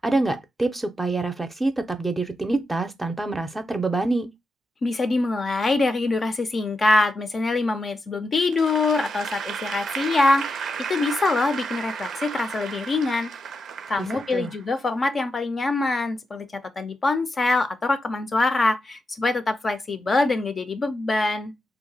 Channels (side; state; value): both; normal; correlation 0.87